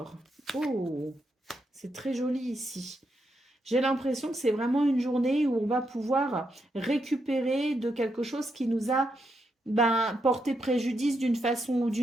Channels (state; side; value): normal; both; correlation 0.81